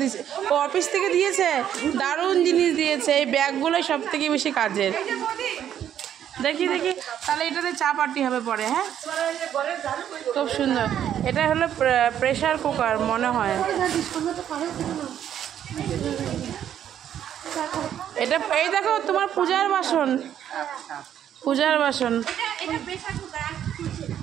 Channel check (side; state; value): left; quieter; 10.1 dB